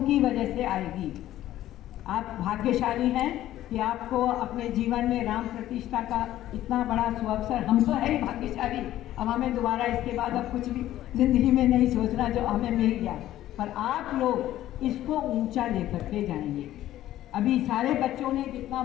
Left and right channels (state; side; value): quieter; right; 13.6 dB